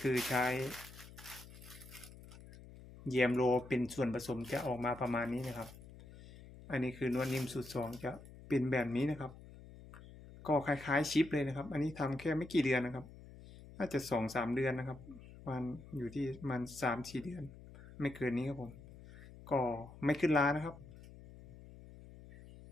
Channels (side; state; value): left; noise; hum, 17 dB below the sound